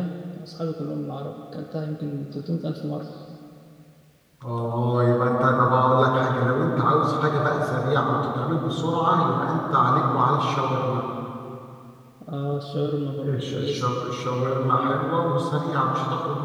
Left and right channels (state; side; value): identical; both; correlation 1.00